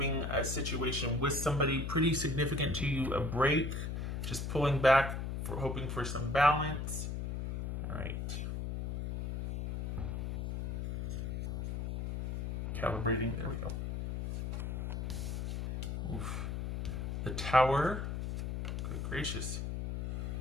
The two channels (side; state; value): left; noise; hum, 3 dB below the sound